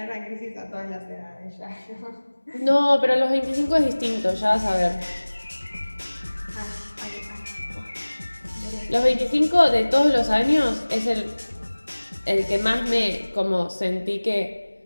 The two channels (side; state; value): both; inverted; correlation -1.00